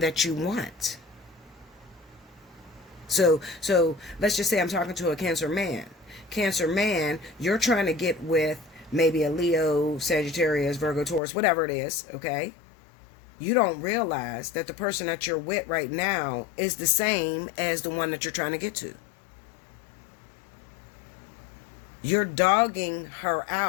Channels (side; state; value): right; drops out; at 11.2 s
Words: you want. So let's just say I'm talking to a Cancer man. Cancer man, you're trying to get with maybe a Leo, Sagittarius, Virgo, Taurus, whatever it is, okay? You don't realize that the person that you're with right now is the same as the one that you're trying to get to. You're dogging her